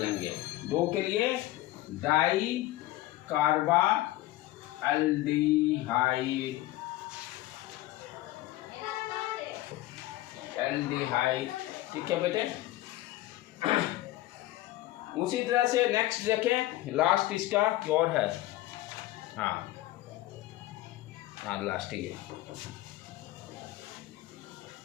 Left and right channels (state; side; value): quieter; right; 16.3 dB